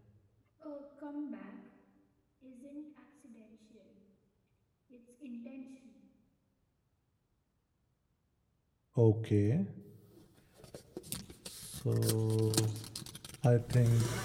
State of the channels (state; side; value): identical; both; correlation 1.00